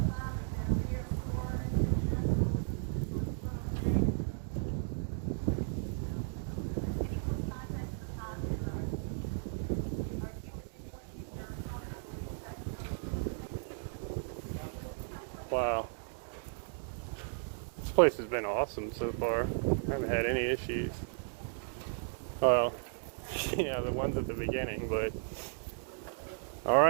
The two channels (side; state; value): left; silent; digital silence